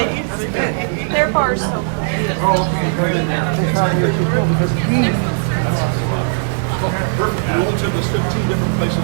Their bar's so cool. Perfect. We only took us 15 different places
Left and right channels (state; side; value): silent; left; digital silence